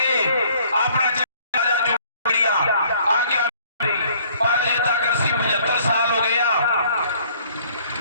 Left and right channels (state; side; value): inverted; both; correlation -0.59